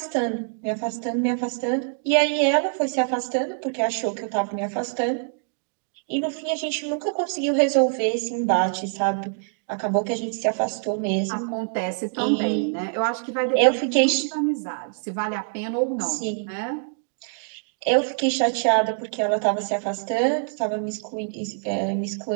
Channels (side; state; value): left; silent; digital silence